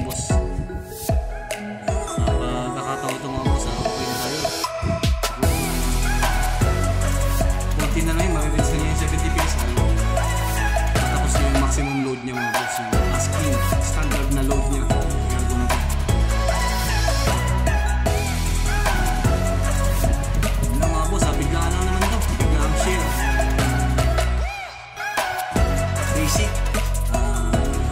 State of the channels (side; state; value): both; identical; correlation 1.00